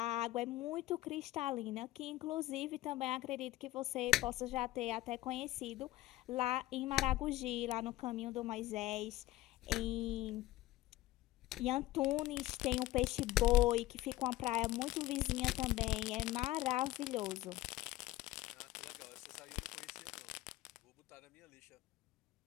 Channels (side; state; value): right; quieter; 16.7 dB